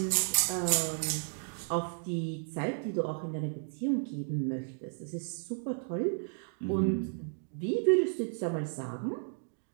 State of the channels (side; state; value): left; silent; 56 dB below the other